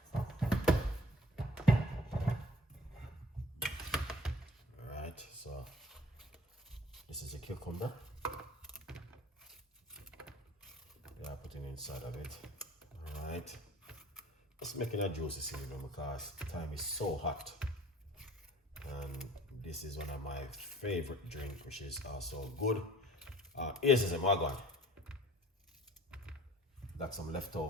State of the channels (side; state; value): both; normal; correlation 0.50